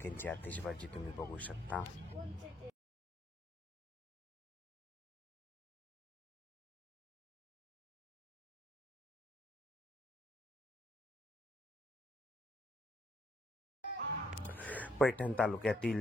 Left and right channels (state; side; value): normal; both; correlation 0.70